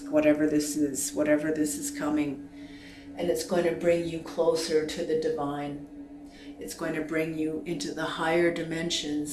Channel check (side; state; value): both; identical; correlation 1.00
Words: whatever this is coming. And it's going to bring you closer to the divine. It's going to bring you into the higher